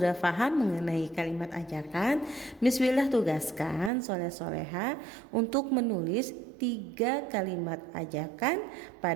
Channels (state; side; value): drops out; left; at 3.9 s